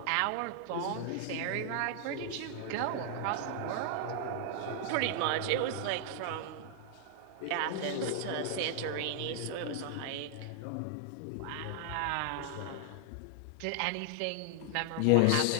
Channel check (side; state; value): both; different; correlation 0.00